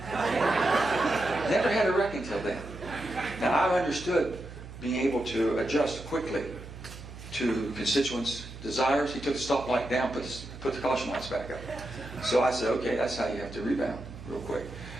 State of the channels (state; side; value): noise; right; hum, 13 dB below the sound